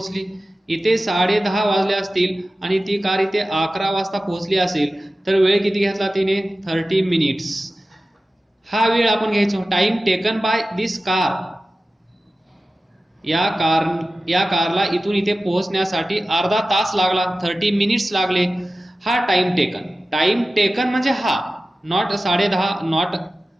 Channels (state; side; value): normal; both; correlation 0.95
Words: इथे 10:30 वाजले असतील आणि ती कार इथे 11 वाजता पोहोचली असेल तर वेळ किती घेतला तिने? 30 मिनिट्स. हा वेळ आपण घ्यायचो. Time taken by this car. या कारला इथून इथे पोहोचण्यासाठी अर्धा तास लागला, 30 मिनिट्स लागले. हा टाइम टेकन. टाइम टेकन म्हणजे हा, नॉट 10:30, नॉट